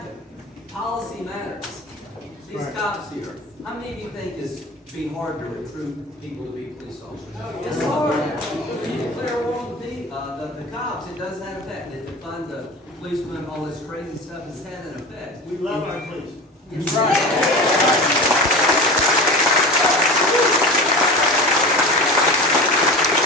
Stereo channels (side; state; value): both; normal; correlation 0.32